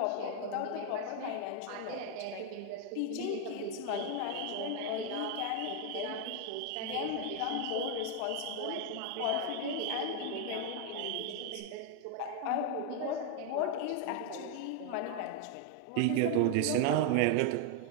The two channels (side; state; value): both; different; correlation 0.01